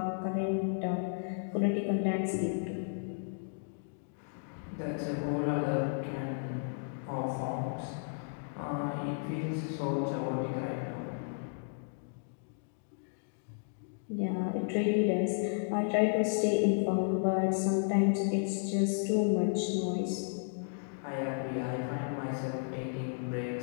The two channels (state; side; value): silent; right; digital silence